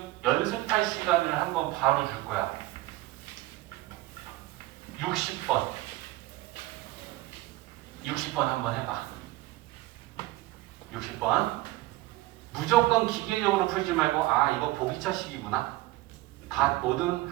연습할 시간을 한번 바로 줄 거야. 60번. 60번 한번 해봐. 60번. 무조건 기계적으로 풀지 말고 아 이거 보기차식이구나. 다 모든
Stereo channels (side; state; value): left; quieter; 18.2 dB